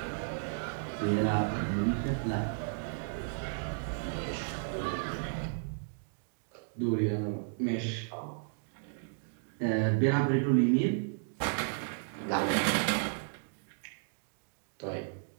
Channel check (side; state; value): left; silent; digital silence